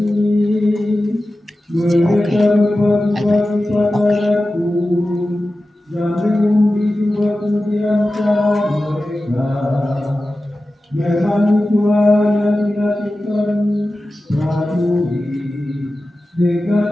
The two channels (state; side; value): normal; both; correlation 0.94